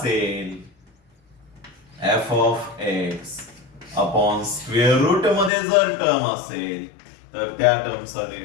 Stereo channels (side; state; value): right; drops out; at 5.5 s